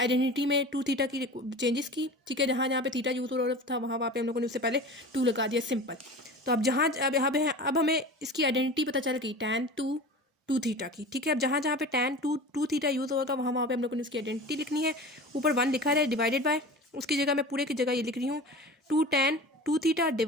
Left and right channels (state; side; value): normal; both; correlation 0.35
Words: में 2 थीटा की चेंजेस की, ठीक है। जहाँ जहाँ पे थीटा यूज़ हो रहा था वहाँ पे हम लोगों ने उससे पहले 2 लगा दिया, सिंपल। तो अब जहाँ अब हमें इसकी आइडेंटिटी पता चल गई tan 2 थीटा की, ठीक है। अब जहाँ जहाँ पे tan 2 थीटा यूज़ होगा वहाँ पे हम लोगों ने उसकी आइडेंटिटी लिखनी है। ऊपर 1 लिखा है डिवाइडेड बाय, उसकी जगह मैं पूरे की जगह ये लिख रही हूँ 2 tan 2 theta